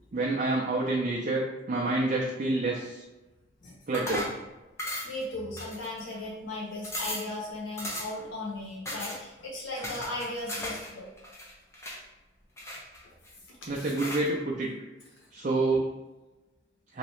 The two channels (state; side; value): normal; both; correlation 0.41